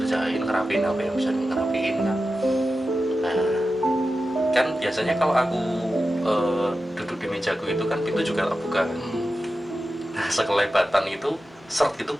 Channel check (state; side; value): normal; both; correlation 0.92